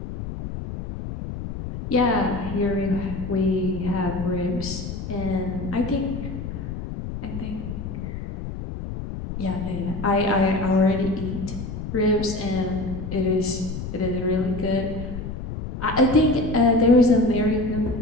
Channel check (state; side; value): noise; left; rumble, 7 dB below the sound